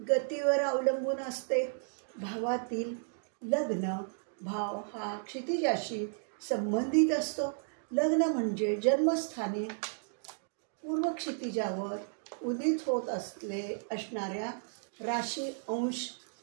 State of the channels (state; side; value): silent; left; digital silence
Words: अवलंबून असते. भावातील लग्न भाव हा क्षितिजाशी संबंधित असतो. लग्न म्हणजे जन्मस्थानी पूर्व क्षितिजावर उदित होत असणाऱ्या राशी, अंश,